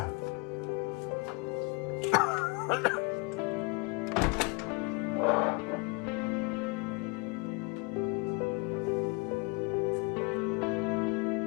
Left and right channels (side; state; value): right; quieter; 30.0 dB